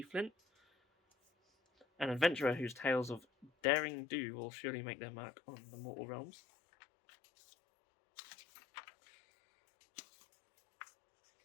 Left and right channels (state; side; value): drops out; right; at 3.5 s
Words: Flint, an adventurer whose tales of daring do will surely make their mark on the mortal realms.